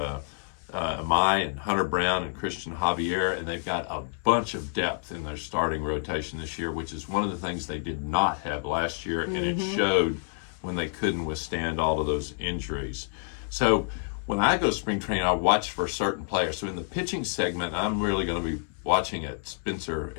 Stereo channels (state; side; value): silent; right; 59 dB below the other